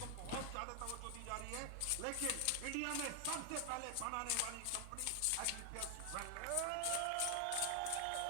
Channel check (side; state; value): both; different; correlation 0.00